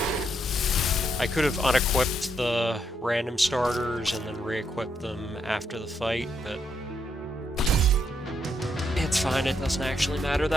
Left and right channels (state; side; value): normal; both; correlation 0.77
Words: I could have unequipped the random starters and then re-equipped them after the fight, but it's fine, it doesn't actually matter